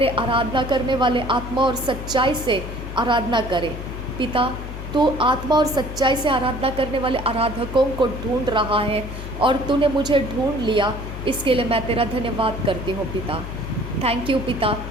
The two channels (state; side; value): noise; left; hum, 9 dB below the sound